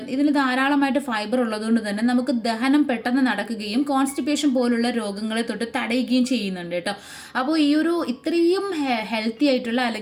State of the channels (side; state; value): both; identical; correlation 1.00